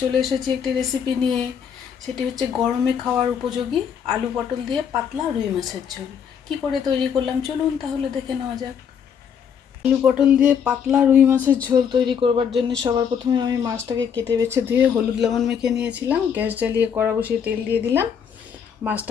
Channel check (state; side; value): quieter; right; 7.6 dB